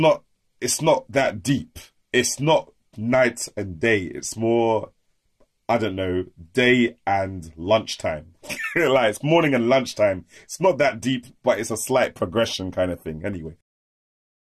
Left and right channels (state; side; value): identical; both; correlation 1.00